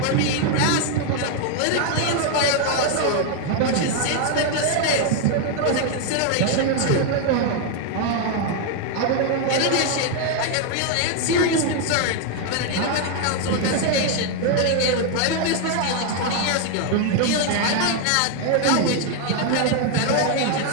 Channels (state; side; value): different; both; correlation 0.01